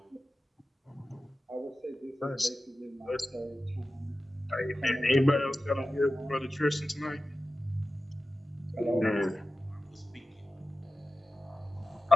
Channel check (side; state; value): both; normal; correlation 0.94